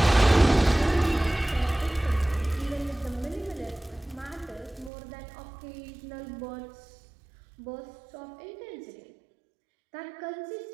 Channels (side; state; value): left; drops out; at 4.9 s